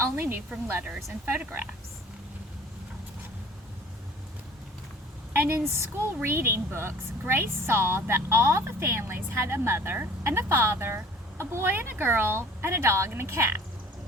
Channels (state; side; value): normal; both; correlation 0.48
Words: knew from letters and photographs. And in school reading books, Grace saw that all the families had a mother and a father, a boy and a girl, and a dog and a cat.